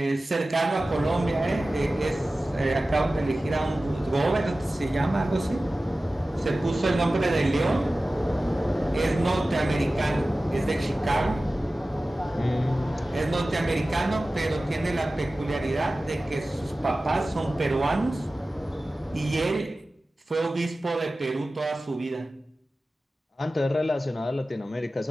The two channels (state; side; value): normal; both; correlation 0.96